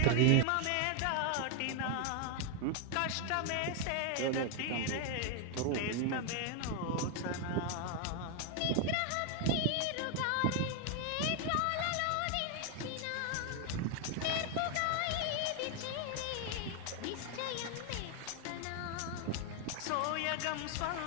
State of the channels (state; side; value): different; both; correlation 0.00